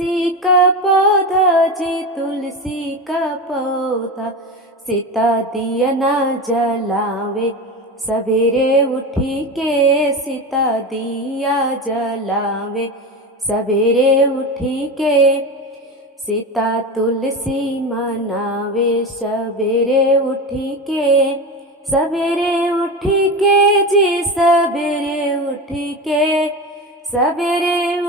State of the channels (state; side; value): normal; both; correlation 0.23